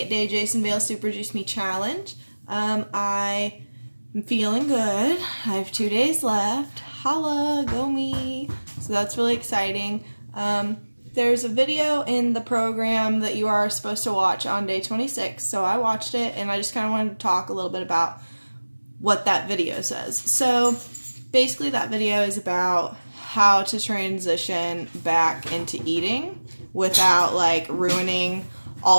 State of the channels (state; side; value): inverted; both; correlation -1.00